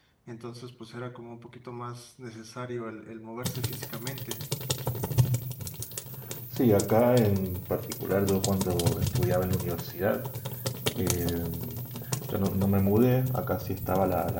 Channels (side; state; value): both; identical; correlation 1.00